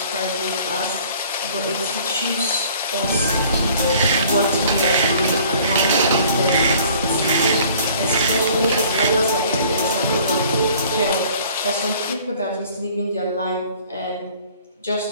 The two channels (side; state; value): both; inverted; correlation -0.53